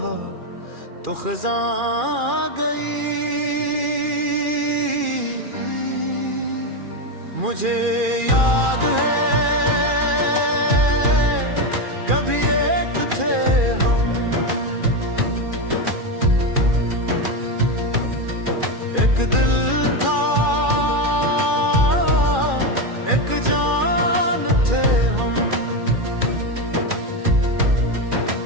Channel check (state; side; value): late; left; 2.4 ms